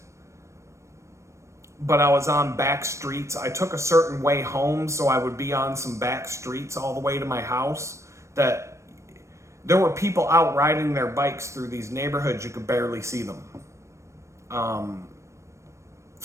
but I was on back streets. I took a certain way home, so I would be on some back streets all the way to my house that there were people out riding their bikes through these neighborhoods. You could barely see them.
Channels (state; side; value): late; left; 0.14 ms